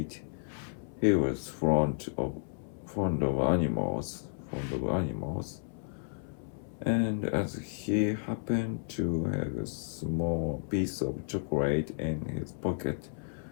He was fond of animals, and as he happened to have a small piece of chocolate in his pocket,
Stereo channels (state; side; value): silent; right; 56 dB below the other